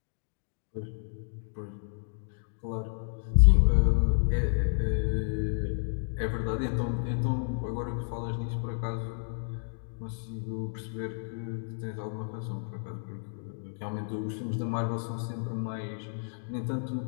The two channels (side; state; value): right; silent; digital silence